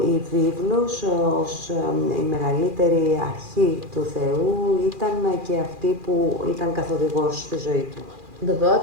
η βίβλος ως η μεγαλύτερη αρχή του Θεού ήταν και αυτή που ήταν καθοδηγός στη ζωή του. The word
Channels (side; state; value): left; late; 2.4 ms